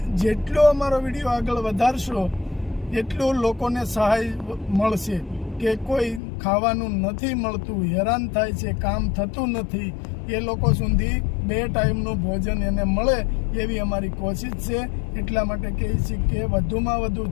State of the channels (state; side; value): drops out; right; at 6.2 s